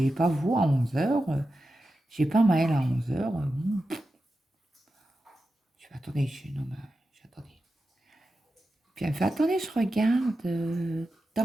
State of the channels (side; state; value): both; normal; correlation 0.91